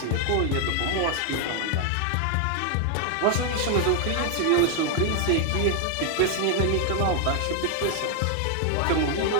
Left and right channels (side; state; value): both; different; correlation 0.00